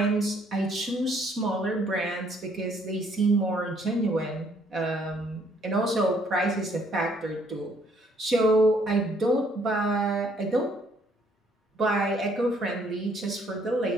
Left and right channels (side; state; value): both; normal; correlation 0.65